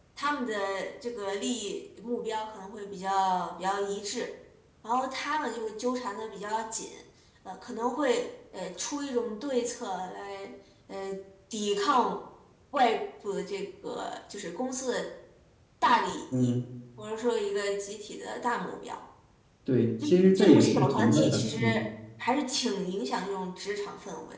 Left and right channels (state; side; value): identical; both; correlation 1.00